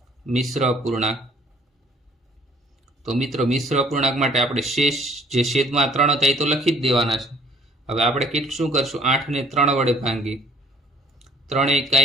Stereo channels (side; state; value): both; normal; correlation 0.57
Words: મિશ્ર અપૂર્ણાંક, તો મિત્રો મિશ્ર અપૂર્ણાંક માટે આપણે શેષ જે છેદમાં 3 હતા એ તો લખી જ દેવાના છે. હવે આપણે શું કરશું? 8 ને 3 વડે ભાંગીએ. 3 એકા